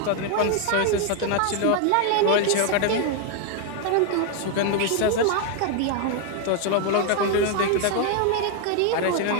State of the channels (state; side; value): different; both; correlation 0.01